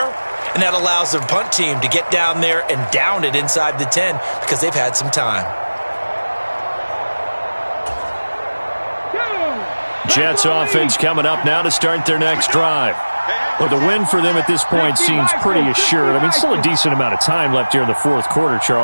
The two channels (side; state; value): both; inverted; correlation -1.00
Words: and that allows their punt team to get down there and down it inside the 10 because they've had some time. Jets offense coming up now to start their next drive. Well, the win for them at this point seems pretty assured. I mean, still a decent amount of time left here in the fourth quarter,